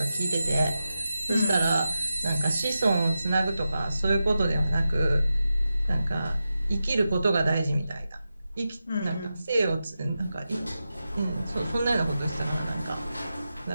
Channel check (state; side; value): inverted; both; correlation -0.91